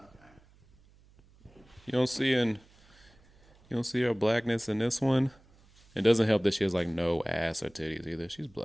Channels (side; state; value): right; noise; hum, 28 dB below the sound